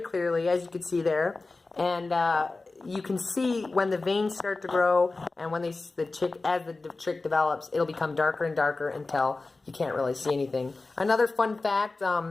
clearly, as you can see there, and you can see when the veins start to grow, and when as the chick develops, it'll become darker and darker until you can't really see anything. Another fun fact:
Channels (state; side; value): quieter; right; 3.5 dB